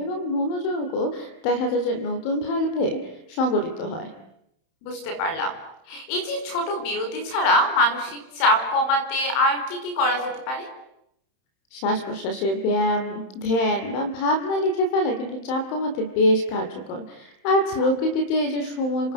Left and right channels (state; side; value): late; right; 31 ms